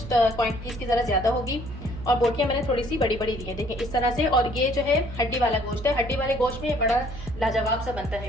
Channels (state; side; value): noise; right; hum, 11 dB below the sound